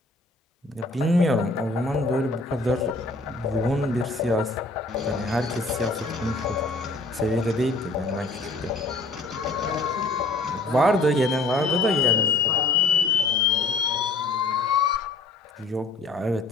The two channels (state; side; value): quieter; right; 3.2 dB